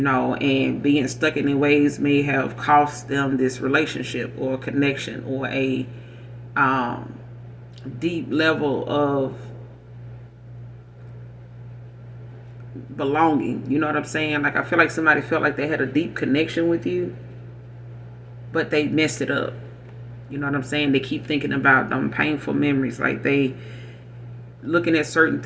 being stuck in their ways may have cost them this relationship or connection or a deep level of belonging. You know what I'm saying? Like, I feel like somebody felt like they had a deep connection with you, but they messed it up. You know what I'm saying? They keep thinking about them painful memories. Like, they looking at certain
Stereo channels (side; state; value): both; identical; correlation 1.00